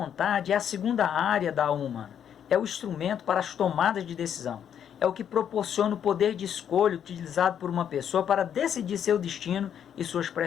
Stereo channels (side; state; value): right; quieter; 8.9 dB